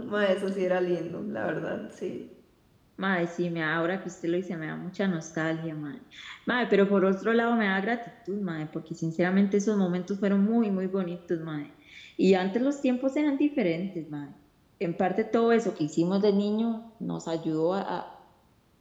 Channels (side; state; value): both; identical; correlation 1.00